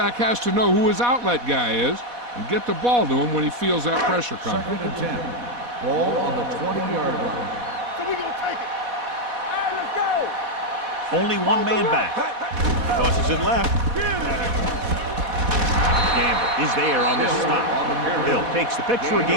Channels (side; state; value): left; late; 4.1 ms